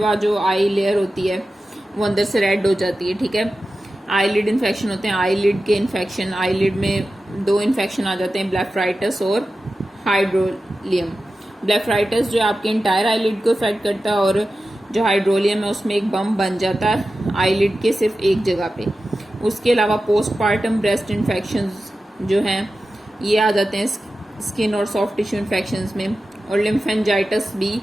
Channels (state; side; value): normal; both; correlation 0.93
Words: जो आई लेयर होती है वो अंदर से रेड हो जाती है। ठीक है, आईलिड इन्फेक्शन होते हैं, आईलिड के इन्फेक्शन, आईलिड में दो इन्फेक्शन आ जाते हैं, ब्लेफराइटिस और हाइड्रोलियम। ब्लेफराइटिस जो आपके इंटायर आईलिड को इफेक्ट करता है, और जो हाइड्रोलियम है उसमें एक बम बन जाता है आईलिड के सिर्फ एक जगह पे। उसके अलावा पोस्टपार्टम ब्रेस्ट इन्फेक्शंस जो हैं ये आ जाते हैं स्किन और सॉफ्ट टिश्यू इन्फेक्शंस में, और लिम्फेंजाइटिस भी